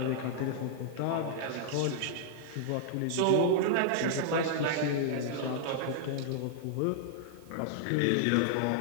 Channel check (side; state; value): both; different; correlation -0.01